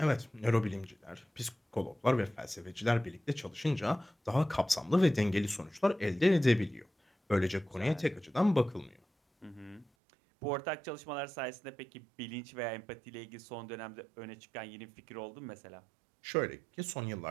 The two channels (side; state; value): left; drops out; at 9.9 s